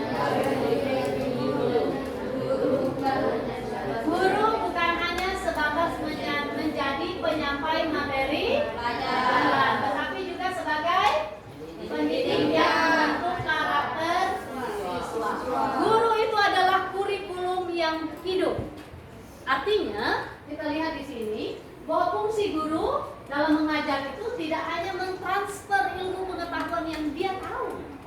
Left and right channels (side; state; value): both; identical; correlation 1.00